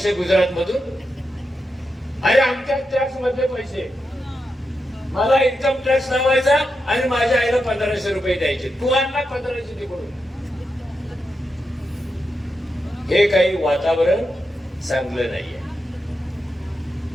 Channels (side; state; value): both; normal; correlation 0.87